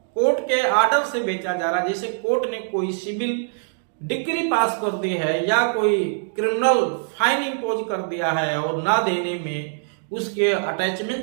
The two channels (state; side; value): silent; left; digital silence